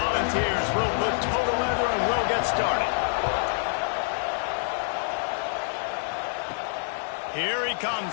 will put total leather and we'll get started. Here he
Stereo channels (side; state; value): right; silent; digital silence